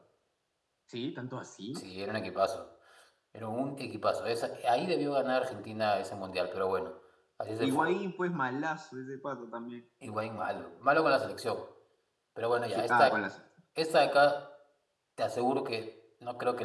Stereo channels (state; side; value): identical; both; correlation 1.00